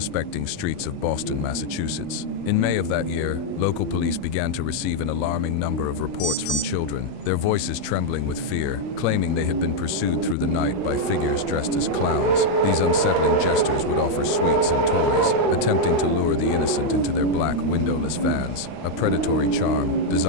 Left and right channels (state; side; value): late; right; 39 ms